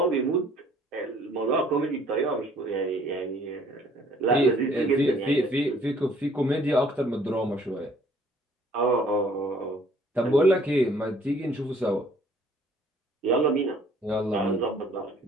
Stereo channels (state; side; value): normal; both; correlation 0.58